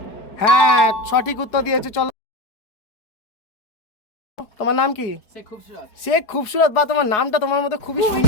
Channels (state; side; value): late; right; 4.8 ms